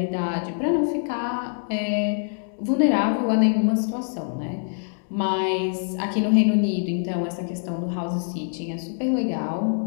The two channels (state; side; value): silent; right; digital silence